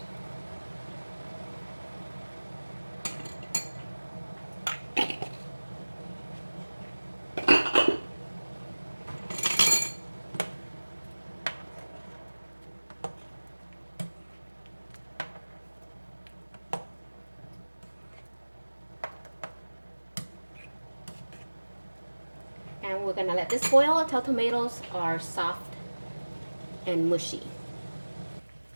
And we're gonna let this boil until tomatoes are soft and mushy.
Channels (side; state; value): both; inverted; correlation -1.00